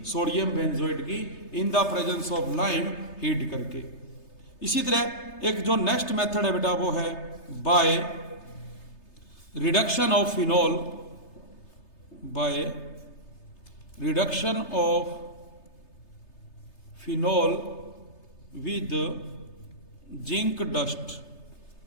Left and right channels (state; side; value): late; right; 3.3 ms